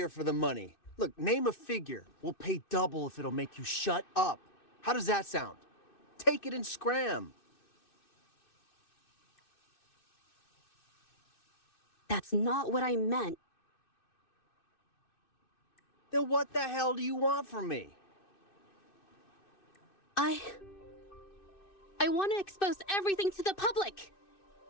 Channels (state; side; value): late; right; 2.6 ms